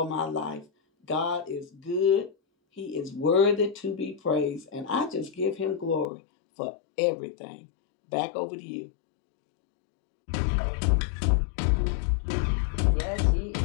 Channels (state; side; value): drops out; right; at 6.1 s